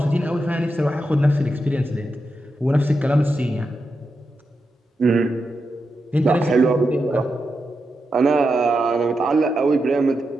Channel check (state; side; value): normal; both; correlation 0.87